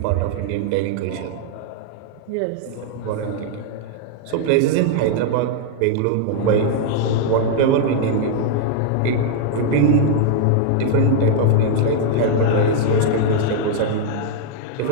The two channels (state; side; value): different; both; correlation 0.00